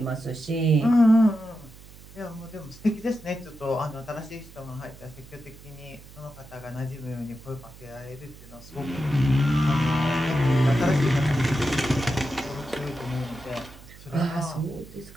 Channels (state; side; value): noise; right; hum, 19 dB below the sound